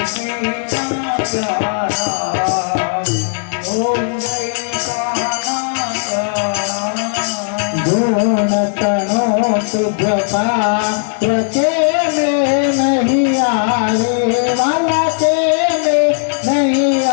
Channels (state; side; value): silent; right; digital silence